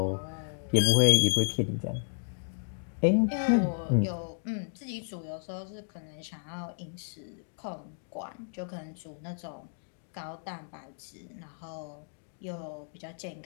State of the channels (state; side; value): silent; right; digital silence